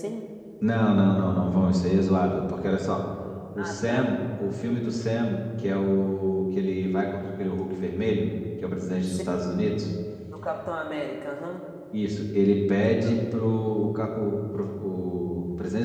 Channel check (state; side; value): identical; both; correlation 1.00